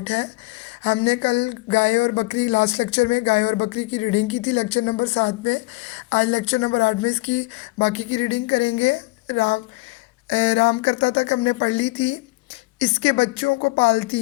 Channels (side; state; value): right; quieter; 22.9 dB